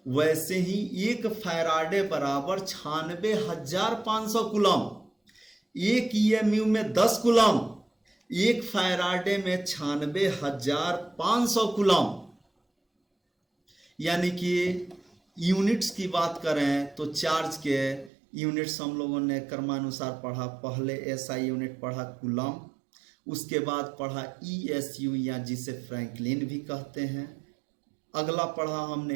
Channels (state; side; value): drops out; left; at 18.1 s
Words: वैसे ही एक फैराडे बराबर 96,500 कूलम्ब। एक EMU में 10 कूलम्ब, एक फैराडे में 96,500 कूलम्ब। यानी कि यूनिट्स की बात करें तो चार्ज के यूनिट्स हम लोगों ने क्रमानुसार पढ़ा। पहले SI यूनिट पढ़ा कूलम्ब, उसके बाद पढ़ा ESU या जिसे फ्रैंकलिन भी कहते हैं। अगला पढ़ा